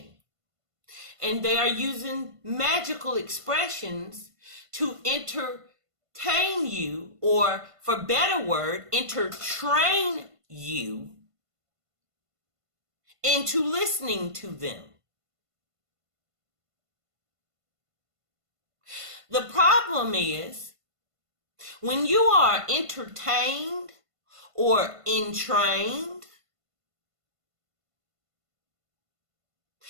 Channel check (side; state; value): left; late; 1.5 ms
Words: And they are using magical expressions to entertain you, or for better word, entertrain you into listening to them. The problem is when you are entertained or entrained,